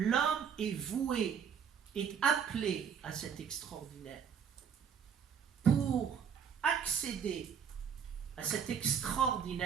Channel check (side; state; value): left; quieter; 7.3 dB